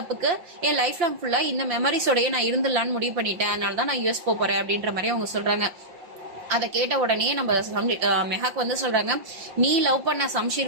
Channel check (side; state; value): left; late; 5.8 ms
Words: என் லைஃப் லாங் ஃபுல்லா இந்த மெமரிஸோடய நான் இருந்துடலான்னு முடிவு பண்ணிட்டேன், அதனாலதான் நான் US போறேன் அப்படின்ற மாதிரி அவங்க சொல்றாங்க. அதை கேட்ட உடனே நம்ம மெஹாக் வந்து சொல்றாங்க, நீ லவ் பண்ண சம்ஷீர்